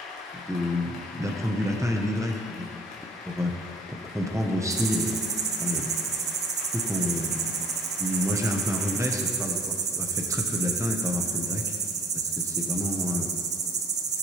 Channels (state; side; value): normal; both; correlation 0.55